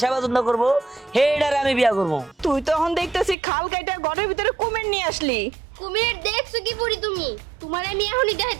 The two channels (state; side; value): drops out; left; at 3.4 s